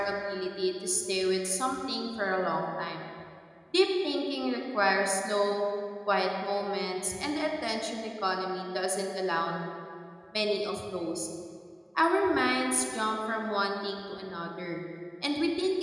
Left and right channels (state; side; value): identical; both; correlation 1.00